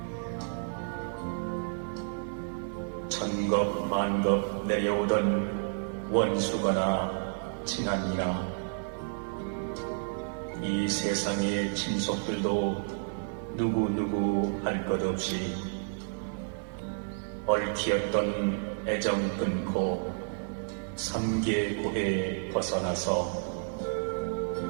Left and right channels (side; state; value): left; silent; digital silence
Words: 천겁 만겁 내려오던 원수거나 친한이나 이 세상의 친속들도 누구 할 것 없이 얽히었던 애정 끊고 삼계고에 벗어나서